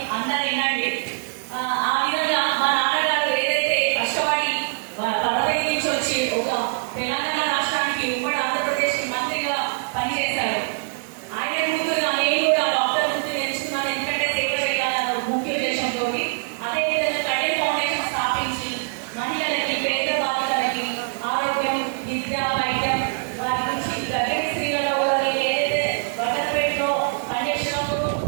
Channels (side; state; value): left; silent; 62 dB below the other